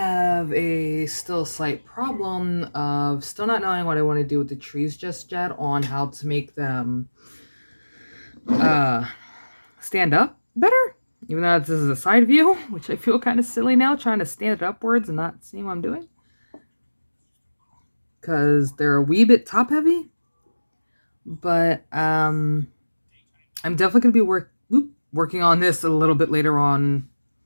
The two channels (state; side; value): inverted; both; correlation -1.00